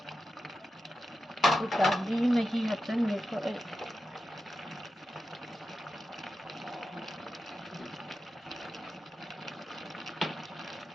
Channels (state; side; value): normal; both; correlation 0.90